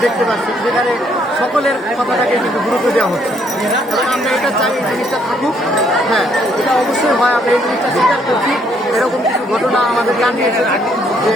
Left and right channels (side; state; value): both; normal; correlation 0.68